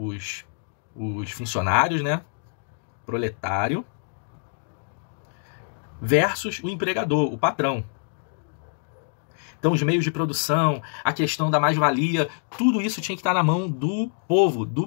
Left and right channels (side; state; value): right; silent; 61 dB below the other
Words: funcionários, né? Proletário, versus o empregador, o patrão. Então, os meios de produção, a questão da mais-valia, tudo isso tinha que estar na mão do povo,